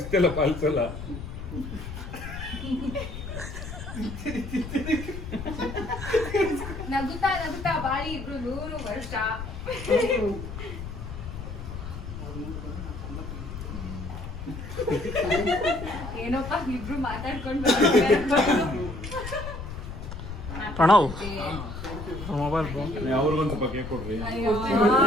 ಪಾಲಿಸಲ್ಲ ನಗುತ್ತಾ ನಗುತ್ತಾ ಬಾಳಿ ಇಬ್ರು 100 ವರ್ಷ. ಏನೋಪ್ಪ ಇಬ್ರು ಮಾತಾಡ್ಕೊಂಡು ಪ್ರಣವ್ ಮೊಬೈಲ್ ಅವ್ರಿಗೊಂದು ಸ್ವಲ್ಪ ಕೇಕ್ ಕೊಡ್ರಿ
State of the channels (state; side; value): noise; left; rumble, 8 dB below the sound